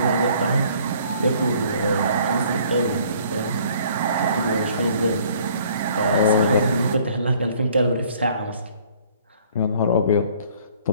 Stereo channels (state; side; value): inverted; both; correlation -0.57